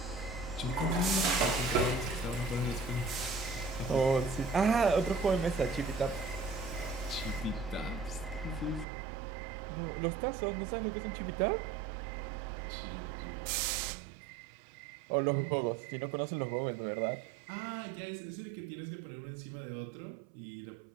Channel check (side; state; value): left; drops out; at 8.8 s